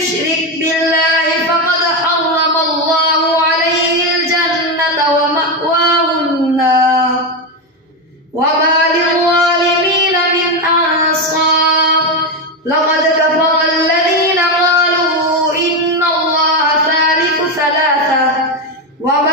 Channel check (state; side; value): normal; both; correlation 0.11